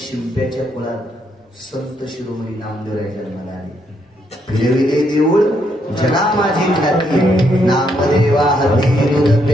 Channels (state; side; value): normal; both; correlation 0.75